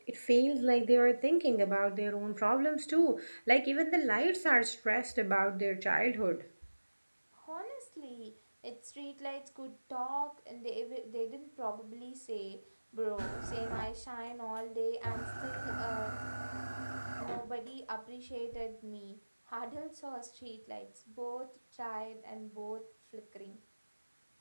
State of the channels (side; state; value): both; inverted; correlation -1.00